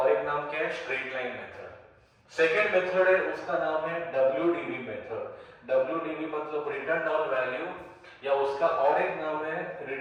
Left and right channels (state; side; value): identical; both; correlation 1.00